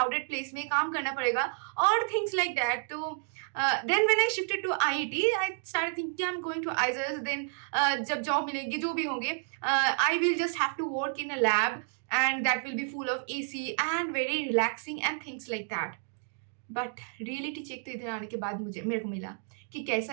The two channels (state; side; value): silent; left; digital silence